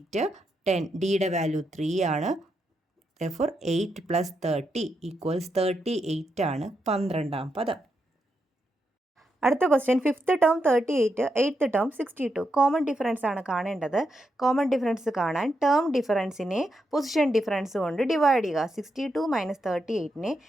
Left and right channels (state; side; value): normal; both; correlation 0.83